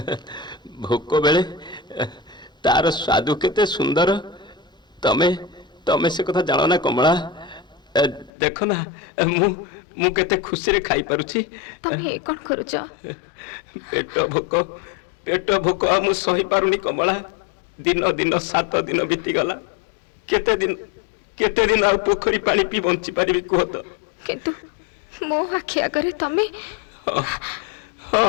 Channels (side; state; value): right; drops out; at 8.3 s